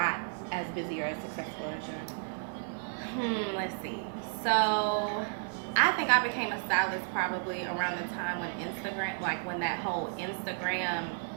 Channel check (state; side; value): silent; left; digital silence